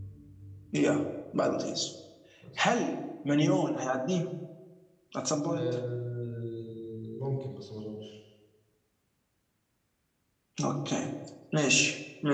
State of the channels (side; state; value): both; identical; correlation 1.00